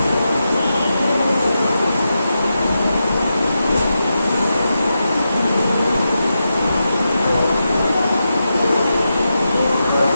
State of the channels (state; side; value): inverted; both; correlation -0.88